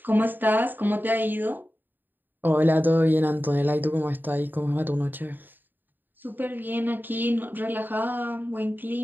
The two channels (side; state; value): left; late; 0.091 ms